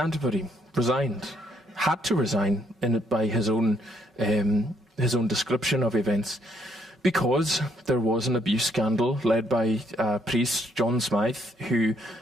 resigned, had to resign by his own his own description of events. Because there was an abuse scandal led by priest John Smythe, who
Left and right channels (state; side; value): normal; both; correlation 0.70